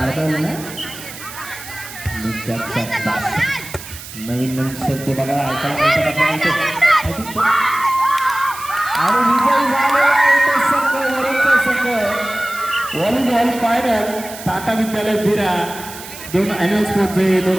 नवीन शब्द बघा आणि विजय झालेला आहे तो संघ वरूनचा संघ व्हॉलीबॉल फायनल टाटा विद्यालय बिरा दोन अॅन्युअल स्पोर्ट्स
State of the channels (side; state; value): right; noise; hiss, 13 dB below the sound